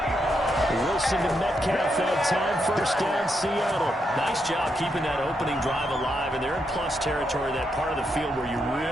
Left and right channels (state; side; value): normal; both; correlation 0.81